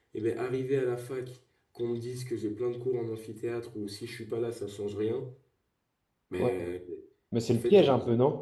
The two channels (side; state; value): both; identical; correlation 1.00